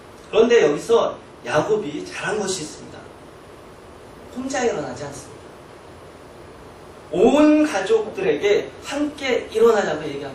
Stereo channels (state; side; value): identical; both; correlation 1.00